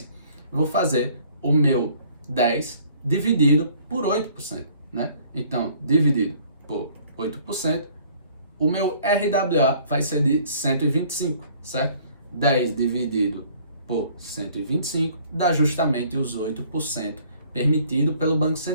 Vou fazer o meu 10 dividido por 8%, né? Então, dividido por 8%, o meu RWA vai ser de 125, certo? 10 dividido por 125 dá justamente os 8% permitido pelo Banco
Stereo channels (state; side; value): inverted; both; correlation -0.57